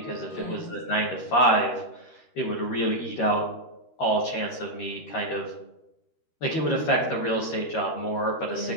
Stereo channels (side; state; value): right; late; 13 ms